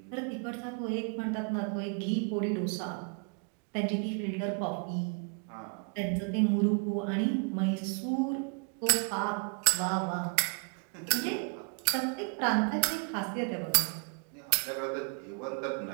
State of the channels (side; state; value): left; quieter; 36.7 dB